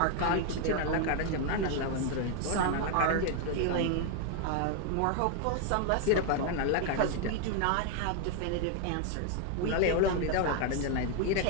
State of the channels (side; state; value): both; different; correlation 0.00